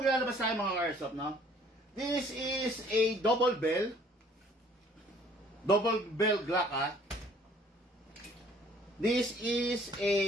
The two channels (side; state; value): both; normal; correlation 0.57